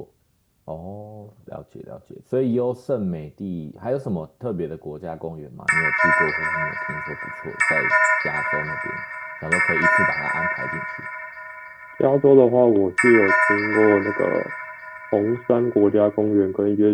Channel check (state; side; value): identical; both; correlation 1.00